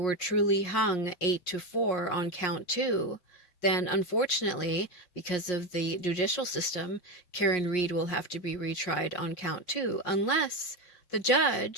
truly hung 8-4 on count 2, then unfortunately, because of the judicial system, Karen Reed will have to be retried on count 2, unless the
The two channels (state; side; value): late; right; 5.6 ms